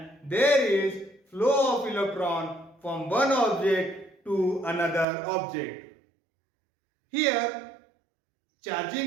there is flow of electron from one object to another object. Here,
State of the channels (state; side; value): drops out; left; at 5.1 s